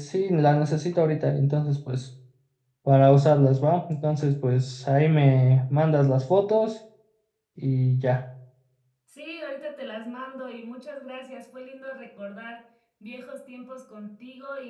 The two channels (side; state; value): both; identical; correlation 1.00